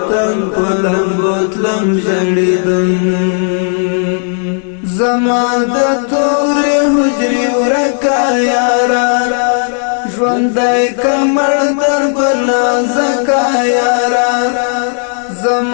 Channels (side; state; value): right; silent; 61 dB below the other